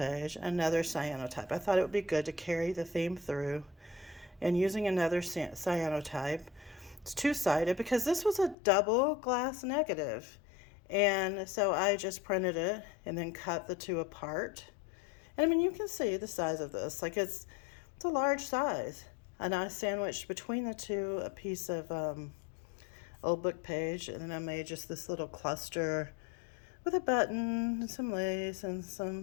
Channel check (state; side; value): drops out; right; at 8.6 s